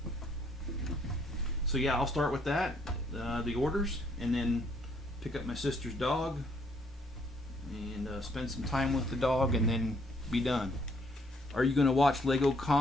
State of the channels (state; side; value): normal; both; correlation 0.68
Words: So yeah, I'll start with that, the orders, and then pick up my sister's dog and spend some time with the dog, and then be done. Are you going to watch Lego